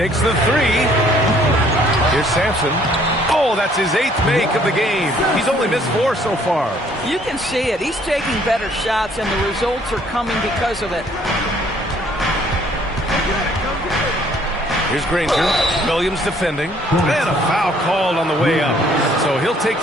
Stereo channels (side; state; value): both; normal; correlation 0.61